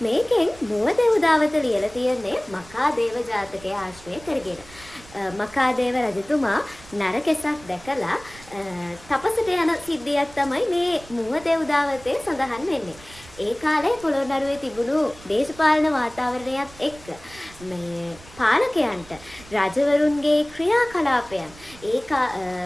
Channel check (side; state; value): right; noise; rumble, 21 dB below the sound